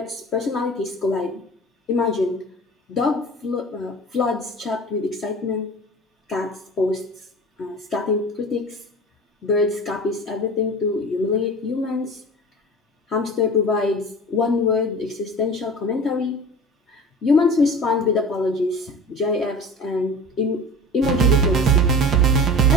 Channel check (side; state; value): both; normal; correlation 0.37